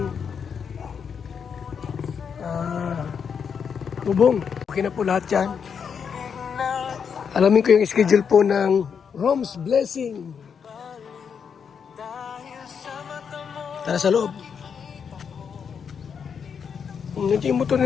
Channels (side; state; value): right; quieter; 6.8 dB